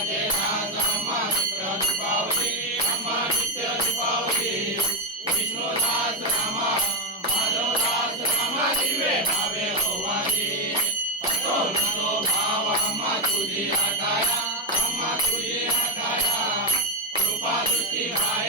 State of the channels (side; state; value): both; normal; correlation 0.04